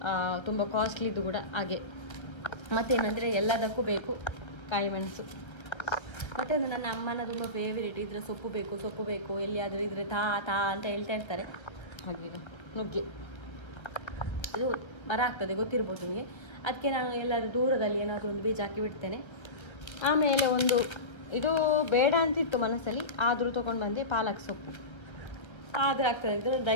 ತುಂಬ ಕಾಸ್ಟ್ಲಿದ್ದು ಕೂಡ ಹಾಗೆ. ಮತ್ತೇನಂದರೆ ಎಲ್ಲದಕ್ಕೂ ಬೇಕು ಕಾಯಿ ಮೆಣಸು. ಮತ್ತು ಒಂದು ನನ್ನ ಅಮ್ಮನ ತುಂಬ ಫೇವರೇಟ್, ಇದರ ಸೊಪ್ಪು ಬೇಕು ಎಲ್ಲಿಯಾದರೂ ಇದ್ರೆ ತಾ ಅಂತ ಹೇಳ್ತಾ ಇರ್ತಾರೆ. ಹಾಗೆ ನುಗ್ಗೆ ಇದು ಮರ ಆಗ್ತದೆ ಗೊತ್ತಿರ್ಬೋದು ನಿಮಗೆ. ಅದಕ್ಕೆ ನಾನು ಎಲ್ಲರೂ ದೂರದಲ್ಲಿ ಏನಾದರೂ ಒಂದು ಬೀಜ ಹಾಕಿ ಬಿಡ್ತೇನೆ. ಆಮೇಲೆ ಒಂದು ಇದು ಬೇಡ ಅಂತಿತ್ತು ಮನಸ್ಸಲ್ಲಿ, ಆದರೂ ತೊಗೊಂಡು ಬಂದೆ ಪಾಲಕ್ ಸೊಪ್ಪು. ಆದರೆ ಆಗ್ತದೆ ಅಂತ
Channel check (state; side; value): late; right; 1.4 ms